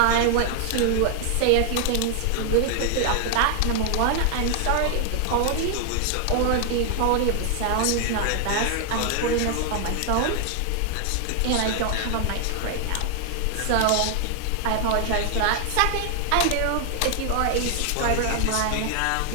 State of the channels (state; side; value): different; both; correlation 0.00